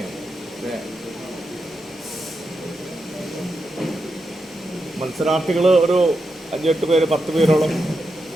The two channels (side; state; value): both; normal; correlation 0.86